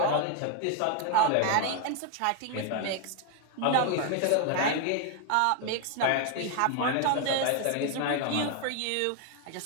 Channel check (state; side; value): different; both; correlation 0.01